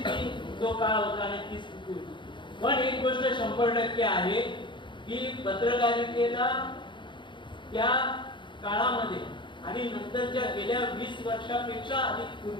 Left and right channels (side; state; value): right; late; 0.23 ms